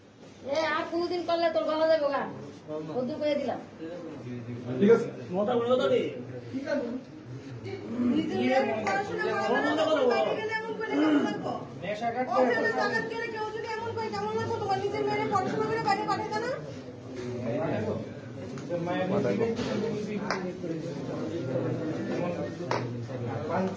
আর কোনদিন করলে তোর গলা যাবে গা কদ্দুর করে দিলাম ঠিক আছে মোটা বলে দাও রে ঠিক আছে নেশা কাটতে কেউ যদি এমন করে কেমন লাগতো তোমার নিজের মেয়ের পড়াশোনা করে বাইরে পাঠাতে না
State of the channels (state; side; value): identical; both; correlation 1.00